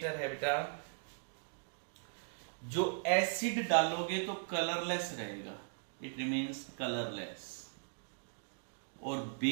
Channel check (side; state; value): left; silent; digital silence